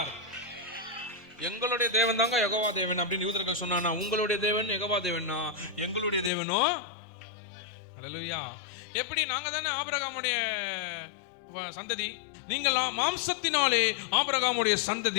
எங்களுடைய தேவன் தாங்க யெகோவா தேவன் அப்படின்னு யூதர்கள் சொன்னானா, உங்களுடைய தேவன் யெகோவா தேவனா? எங்களுடைய தேவனோ ஹல்லேலூயா. எப்படி? நாங்க தானே ஆபிரகாமுடைய சந்ததி. நீங்கள் மாம்சத்தினாலே ஆபிரகாமுடைய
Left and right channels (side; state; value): right; drops out; at 6.3 s